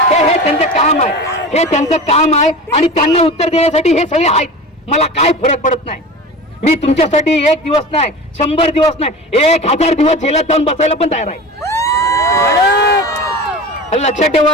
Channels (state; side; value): normal; both; correlation 0.33